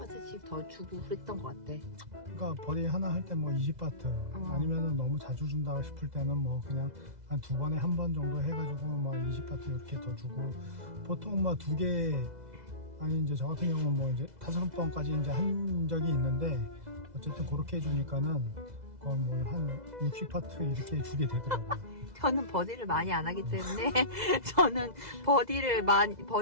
더 주고 그랬던 것 같아. 그러니까 버디 하나 할 때 뭐 20바트 아니면은 너무 자주 준다 싶을 때는 뭐 그냥 한 2번에 1번 정도 해가지고 뭐 20바트 이렇게 더 주고 보통 뭐 2개 아니 이제 저 같은 경우는 뭐 이제 5번까지 이제 한 적이 있는데 어쨌든 그렇게 해주니까는 거의 뭐 한 60파트 이렇게 주게 되더라고요. 저는 버디를 많이 안 하기 때문에 저는 버디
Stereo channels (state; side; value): late; left; 2.0 ms